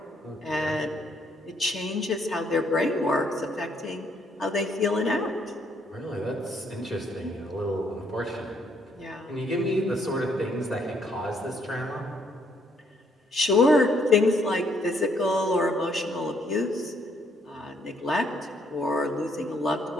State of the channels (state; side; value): normal; both; correlation 0.70